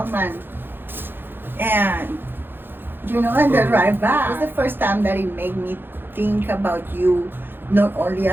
And, and the ride back. It was the first time that it made me think about you, not only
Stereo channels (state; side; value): late; left; 0.10 ms